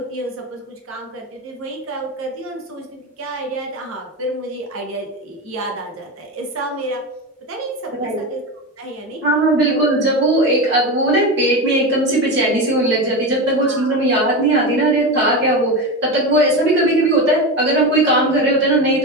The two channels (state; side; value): normal; both; correlation 0.20